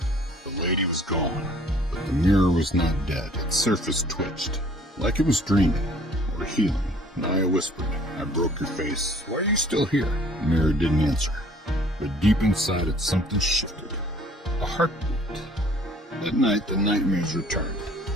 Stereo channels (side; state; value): both; normal; correlation 0.55